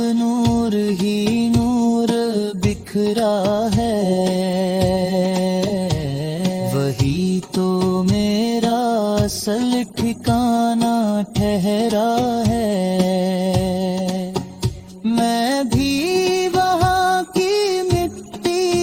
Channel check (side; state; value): both; identical; correlation 1.00